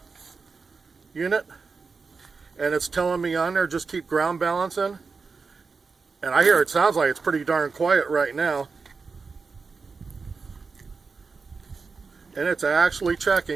unit, and it's telling me on there just keep ground balancing. And I hear it sounds like it's pretty darn quiet right now. And it's actually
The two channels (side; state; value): left; quieter; 4.7 dB